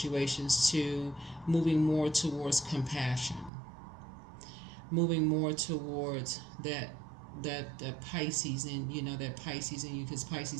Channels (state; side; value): drops out; left; at 3.5 s